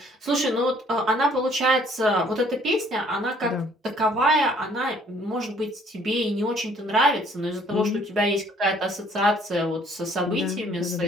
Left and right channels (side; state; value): both; normal; correlation 0.60